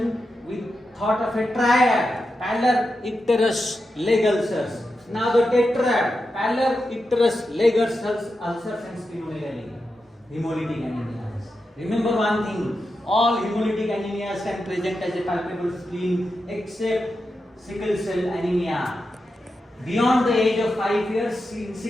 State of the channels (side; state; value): both; normal; correlation 0.89